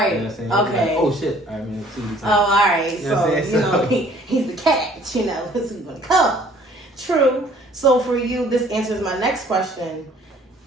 You know what I'm saying? Okay. Like, oh shit. All right, man. See you time. Oh, all right. You know So, he's the catch, you know, this is going to come. True. So for you, this answers my next question.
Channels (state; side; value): normal; both; correlation 0.56